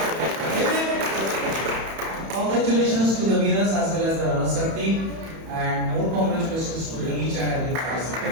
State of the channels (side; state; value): left; late; 31 ms